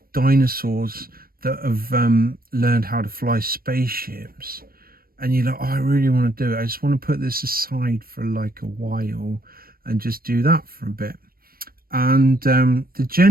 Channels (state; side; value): late; left; 0.43 ms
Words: dinosaurs that have learned how to fly spaceships. And you're like, oh, I really want to do it. I just want to put this aside for like a while and just do that for a bit. And the